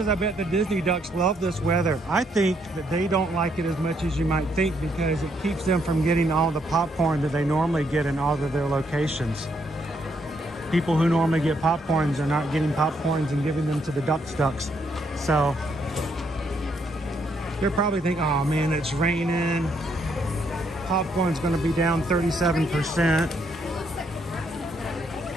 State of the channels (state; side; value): normal; both; correlation 0.73